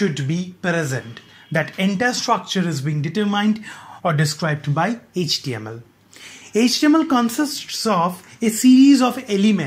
be present. That entire structure is being determined or described by HTML. HTML consists of a series of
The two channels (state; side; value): identical; both; correlation 1.00